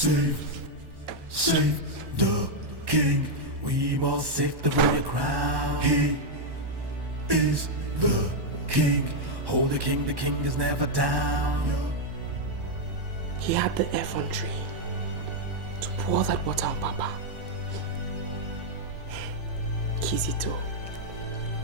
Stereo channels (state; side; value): late; left; 1.1 ms